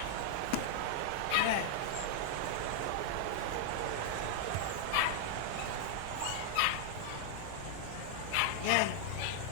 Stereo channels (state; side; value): different; both; correlation 0.00